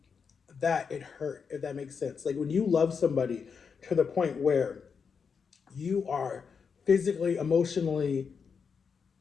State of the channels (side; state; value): right; quieter; 6.0 dB